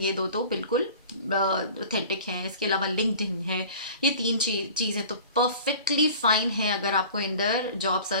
दो तो बिल्कुल ऑथेंटिक हैं। इसके अलावा लिंक्डइन है। ये तीन चीज़ें तो परफेक्टली फाइन है। अगर आपको इंदर जॉब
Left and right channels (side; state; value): both; inverted; correlation -0.43